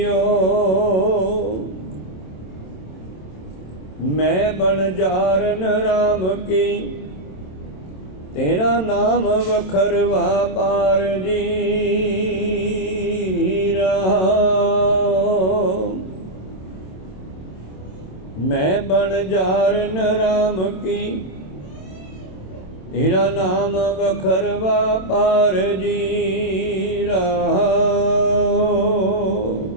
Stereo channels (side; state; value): right; late; 27 ms